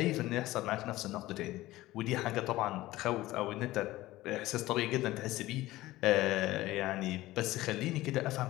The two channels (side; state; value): right; quieter; 17.2 dB